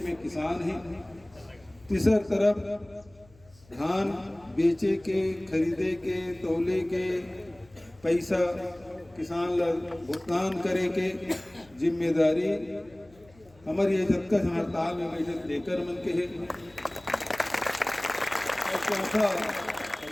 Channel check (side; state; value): left; noise; hum, 27 dB below the sound